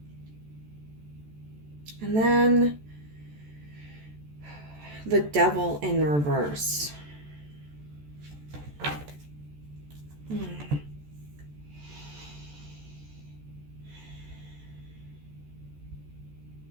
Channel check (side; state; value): left; late; 14 ms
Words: And then the Devil in reverse.